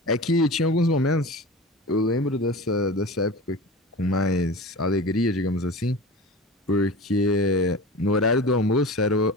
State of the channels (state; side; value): normal; both; correlation 0.33